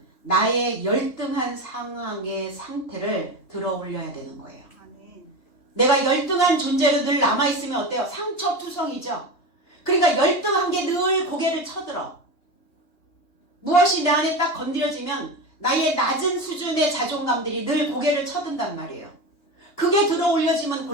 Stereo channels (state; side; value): late; right; 3.3 ms